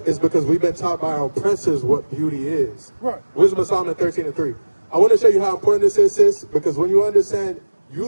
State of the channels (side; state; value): both; inverted; correlation -1.00